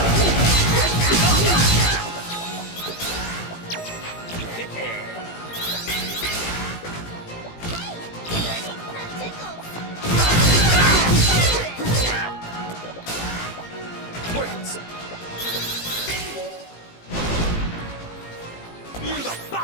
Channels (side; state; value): right; late; 18 ms